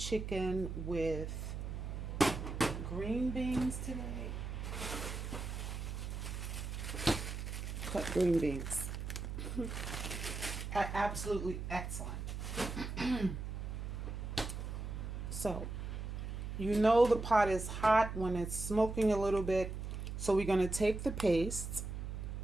with green beans today. Cut green beans. Absolutely excellent. So, you know the pot is hot when it's smoking a little bit. So we're gonna take the paste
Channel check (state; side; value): noise; right; hum, 5 dB below the sound